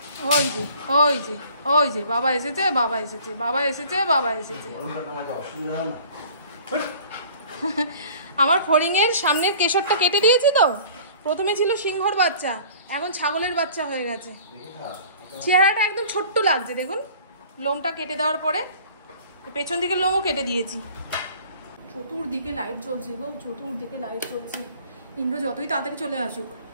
ওই যে ওই যে ওই যে বাবা এসেছে, বাবা এসেছে, বাবা এসেছে, বাবা এসেছে। আমার ফড়িংয়ের সামনের কেশরটা কেটে দিয়েছি তো। প্রথমে ছিল সিংহর বাচ্চা, এখন ছাগলের বাচ্চা হয়ে গেছে। চেহারাটা একদম ছোট্ট লাগছে দেখুন। লোমটা কেটে দেওয়ার পরে পেছন দিকে লোমও কেটে দিয়েছি। চতুর্দিকে লাইট জ্বলছে গো, চতুর্দিকে লাইট জ্বলছে। ইন্দ্র যতই তাড়াতাড়ি চলে আসুক,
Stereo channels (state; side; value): inverted; both; correlation -0.49